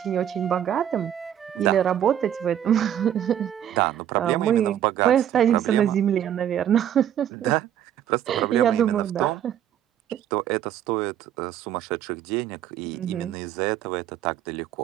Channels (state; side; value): quieter; left; 10.4 dB